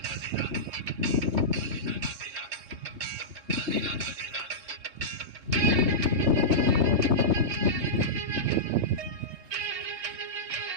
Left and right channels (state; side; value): late; left; 3.2 ms